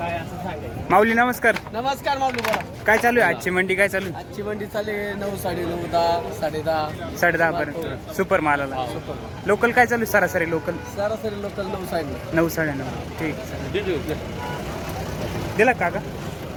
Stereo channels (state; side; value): identical; both; correlation 1.00